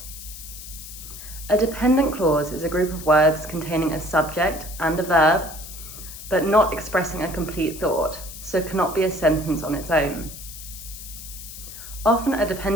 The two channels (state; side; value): noise; left; hiss, 13 dB below the sound